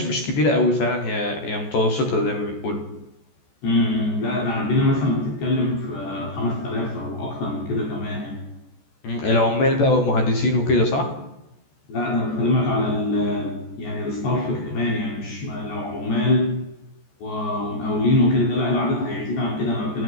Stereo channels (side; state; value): right; late; 14 ms